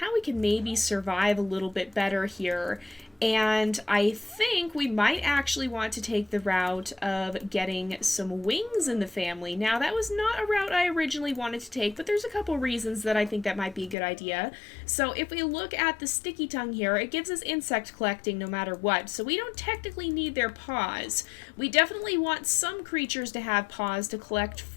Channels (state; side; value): drops out; right; at 14.0 s